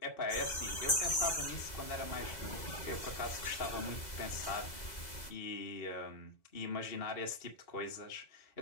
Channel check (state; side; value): late; right; 2.0 ms